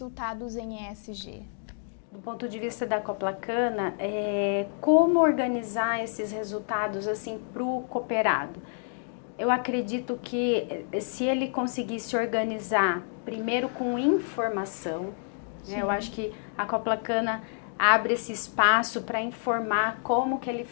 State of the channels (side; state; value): right; silent; 59 dB below the other